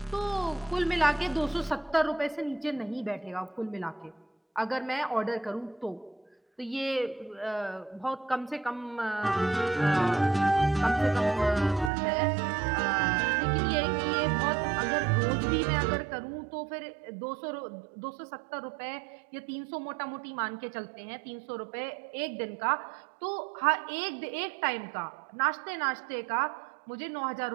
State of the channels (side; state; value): left; drops out; at 11.9 s